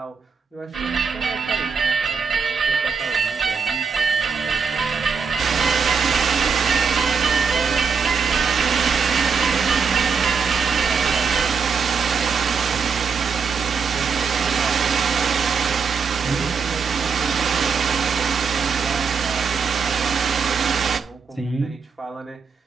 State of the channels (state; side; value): quieter; left; 5.7 dB